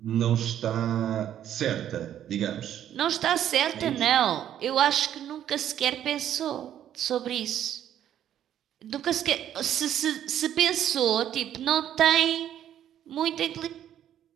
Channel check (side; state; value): left; quieter; 10.7 dB